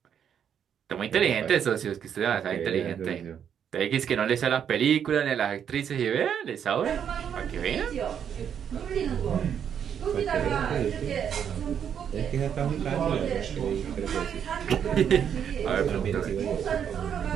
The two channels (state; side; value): quieter; left; 8.4 dB